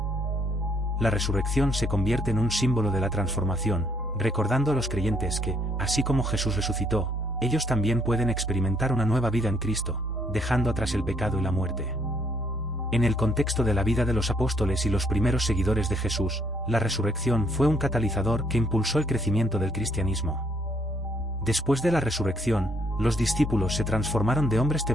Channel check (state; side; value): normal; both; correlation 0.69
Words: La resurrección se convierte en un símbolo de la transformación, recordando a los creyentes que, así como Jesús resucitó, ellos también pueden experimentar una nueva vida en Cristo, dejando atrás el pecado y la muerte. En el contexto de la vida de los apóstoles y los primeros seguidores de Jesús, la resurrección fue un catalizador que impulsó el crecimiento del cristianismo. Después de la resurrección, los discípulos se transformaron de hombres